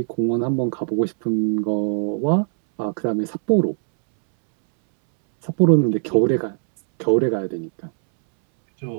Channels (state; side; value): silent; left; 65 dB below the other